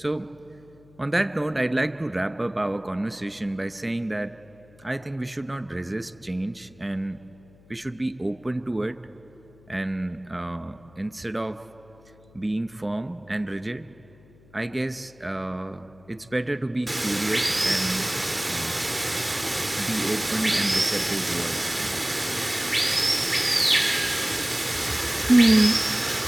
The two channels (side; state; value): left; noise; hum, 26 dB below the sound